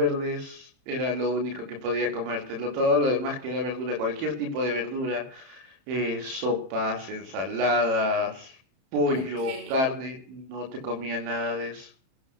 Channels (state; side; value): late; left; 31 ms